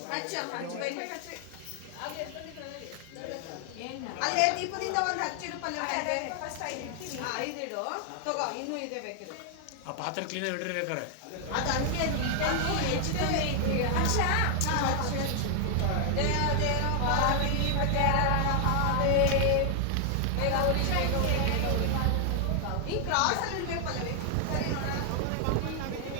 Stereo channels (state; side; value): different; both; correlation 0.00